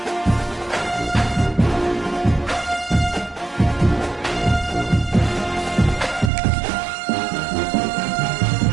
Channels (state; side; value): drops out; left; at 6.3 s